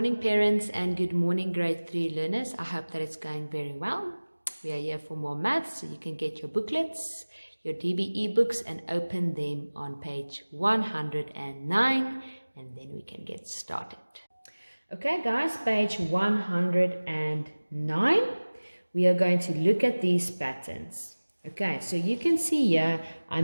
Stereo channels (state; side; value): inverted; both; correlation -1.00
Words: parents, and good morning, grade 3 learners. I hope that it's going very well. We are here for more maths, so you can get your booklets, your DBE books, and open them on page 109, and then we can get started. Okay, guys, page 109. We are going to look at these patterns. Okay, so you can see here I